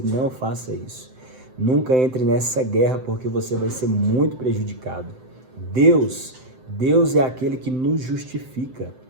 Não faça isso. Nunca entre nessa guerra, porque você vai ser muito prejudicado. Deus é aquele que nos justifica.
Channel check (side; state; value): left; late; 7.8 ms